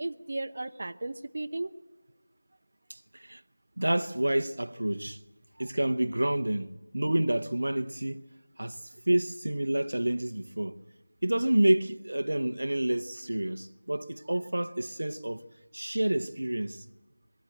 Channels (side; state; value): both; inverted; correlation -1.00